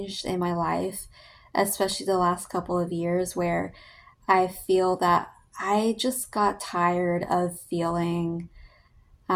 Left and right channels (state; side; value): identical; both; correlation 1.00